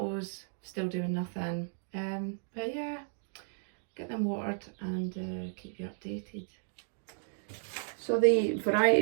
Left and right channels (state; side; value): silent; left; digital silence